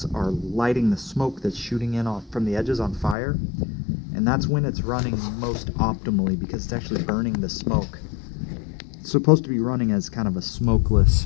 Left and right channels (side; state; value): right; drops out; at 3.2 s